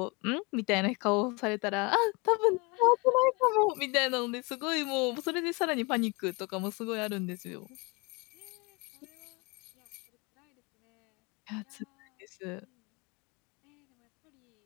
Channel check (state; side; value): quieter; right; 28.4 dB